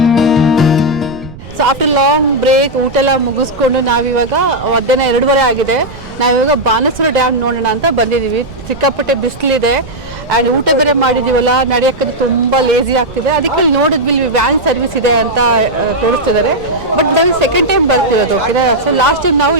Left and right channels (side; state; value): right; noise; rumble, 16 dB below the sound